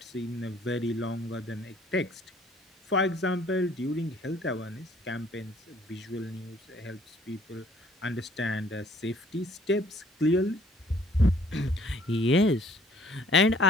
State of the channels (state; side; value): normal; both; correlation 0.58